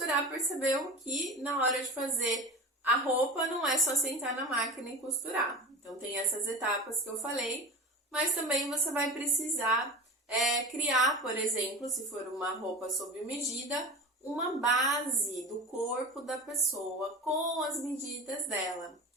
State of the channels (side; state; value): both; normal; correlation 0.30